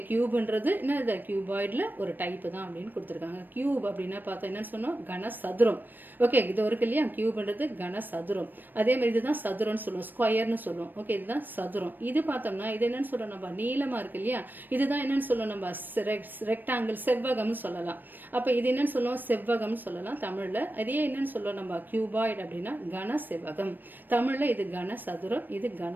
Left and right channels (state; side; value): late; left; 0.091 ms